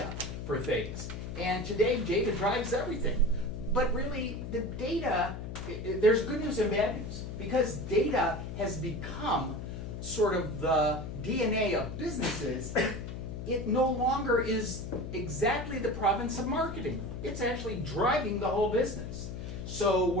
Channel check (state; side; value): noise; left; hum, 7 dB below the sound